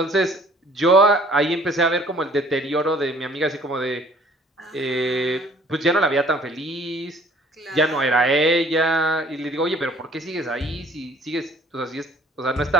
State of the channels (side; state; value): both; normal; correlation 0.55